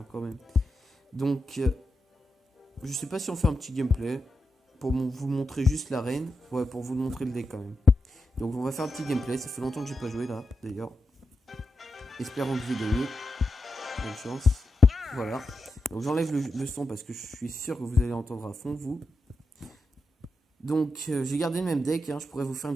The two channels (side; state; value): both; normal; correlation 0.88